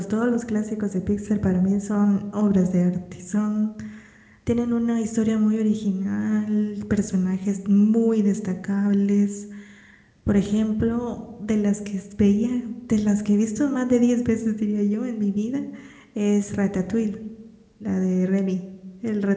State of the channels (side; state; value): both; identical; correlation 1.00